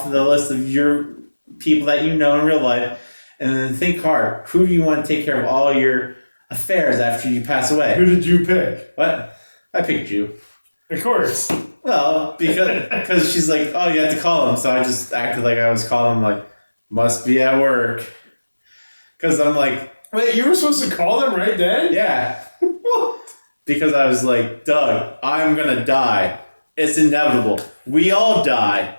of the list of your people that you know in real life. And then think hard. Who do you want to take care of all your affairs after you pass away? Who did you pick? What? I picked you. Of course. Well, because she's like, oh, you have to call him. So I just acted like I was calling him, like, must be at work. Because I'm like... Wait, you were supposed to call them right then? Yeah. What? Because I was like, Doug, I'm going to die. It's inevitable. We all die.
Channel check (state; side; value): inverted; both; correlation -1.00